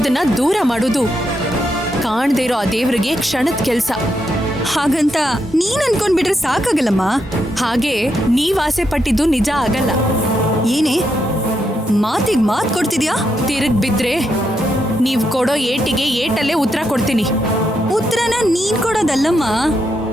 ದೂರ ಮಾಡೋದು ಕಾಣ್ದೇ ಇರೋ ಆ ದೇವ್ರಿಗೆ ಕ್ಷಣದ ಕೆಲ್ಸ. ಹಾಗಂತ ನೀನ್ ಅನ್ಕೊಂಡ್ಬಿಟ್ರೆ ಸಾಕಾಗಲ್ಲಮ್ಮ. ಹಾಗೆ ನೀವ್ ಆಸೆ ಪಟ್ಟಿದ್ದು ನಿಜ ಆಗಲ್ಲ. ಏನೇ ಮಾತಿಗೆ ಮಾತು ಕೊಡ್ತಿದ್ಯಾ? ತಿರುಗ್ ಬಿದ್ರೆ ನೀವ್ ಕೊಡೋ ಏಟಿಗೆ ಏಟಲ್ಲೇ ಉತ್ತರ ಕೊಡ್ತೀನಿ. ಉತ್ತರನ ನೀನ್ ಕೊಡೋದಲ್ಲಮ್ಮ,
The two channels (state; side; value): normal; both; correlation 0.81